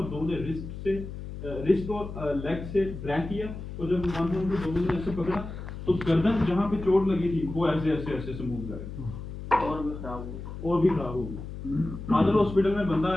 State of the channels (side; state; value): left; noise; hum, 9 dB below the sound